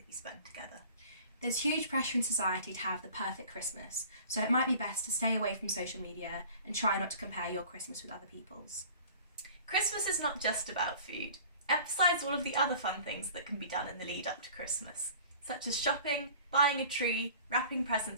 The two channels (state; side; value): inverted; both; correlation -0.45